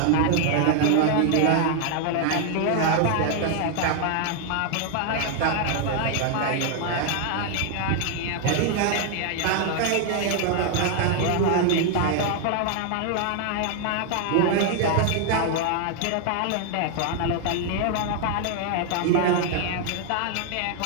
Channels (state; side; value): different; both; correlation 0.00